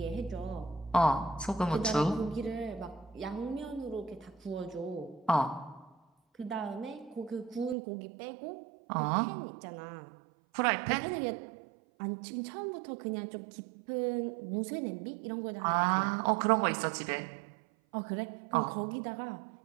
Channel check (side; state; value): left; drops out; at 7.8 s